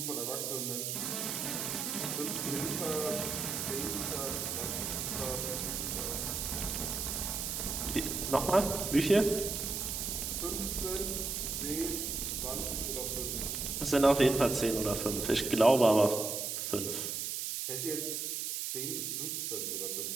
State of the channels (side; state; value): right; noise; hiss, 2 dB below the sound